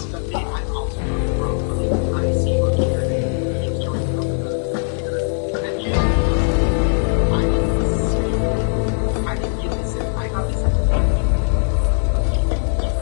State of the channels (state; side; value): silent; right; digital silence